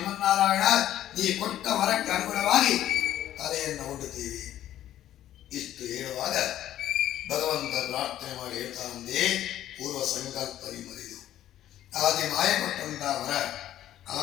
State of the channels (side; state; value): right; quieter; 12.4 dB